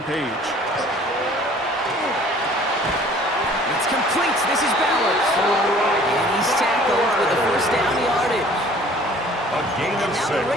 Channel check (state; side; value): normal; both; correlation 0.52